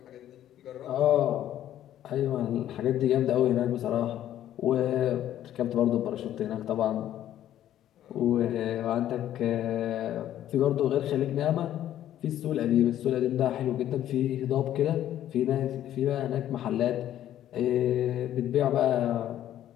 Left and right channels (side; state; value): right; quieter; 11.9 dB